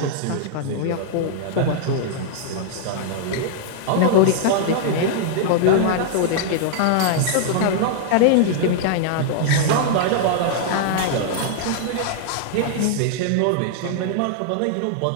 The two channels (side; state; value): both; different; correlation -0.01